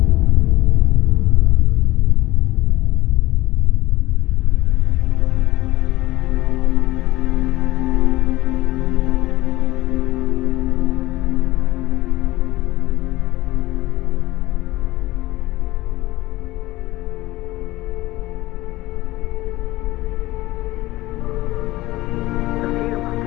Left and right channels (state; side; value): quieter; right; 18.0 dB